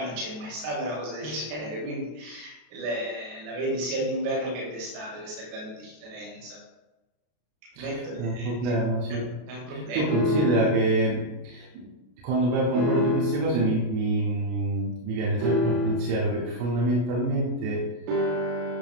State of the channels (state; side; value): late; left; 33 ms